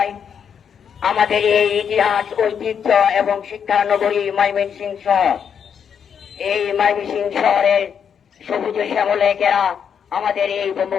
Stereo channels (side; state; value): right; quieter; 7.5 dB